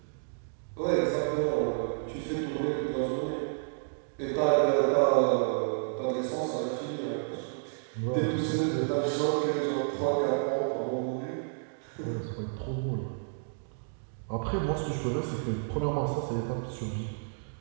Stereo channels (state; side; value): silent; left; digital silence